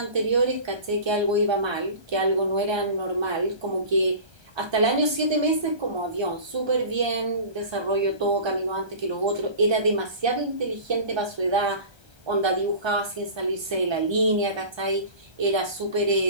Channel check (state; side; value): late; left; 1.3 ms